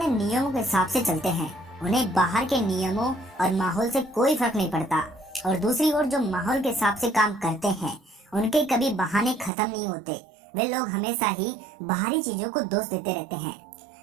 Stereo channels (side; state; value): left; drops out; at 9.5 s